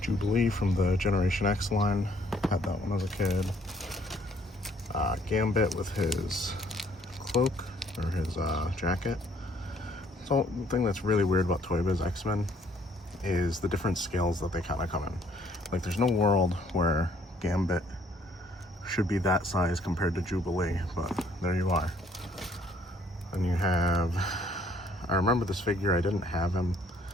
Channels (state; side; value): normal; both; correlation 0.63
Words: from the Generation X line. Had that one as a kid. Gambit with his cloak or his jacket. So the thing that's really weird about Toy Biz X-Men is the different scales that they kind of come in. Like there's no world where Gambit should be that size compared to Jubilee, but there you are. Then you have, I remember this figure, I didn't have him,